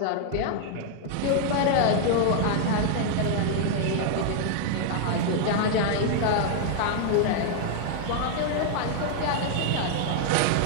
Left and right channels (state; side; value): different; both; correlation 0.00